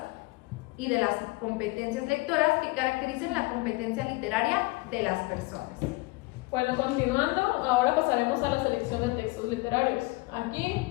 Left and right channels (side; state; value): right; quieter; 23.8 dB